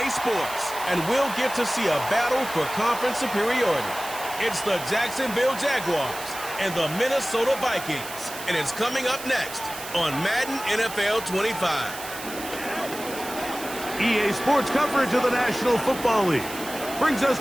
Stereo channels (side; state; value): right; noise; hiss, 11 dB below the sound